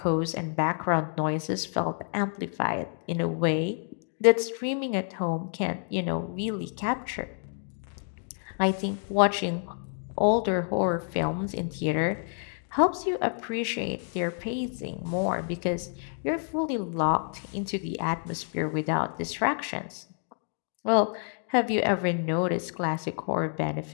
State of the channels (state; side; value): silent; right; 57 dB below the other